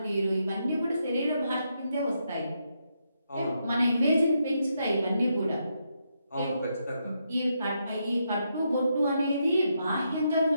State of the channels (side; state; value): both; inverted; correlation -0.80